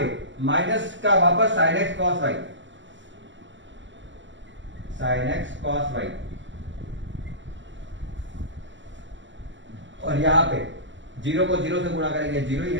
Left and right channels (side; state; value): left; late; 0.54 ms